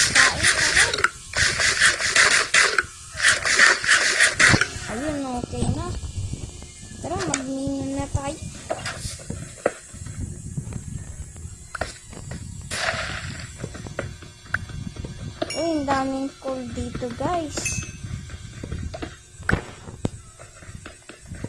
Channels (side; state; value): both; identical; correlation 1.00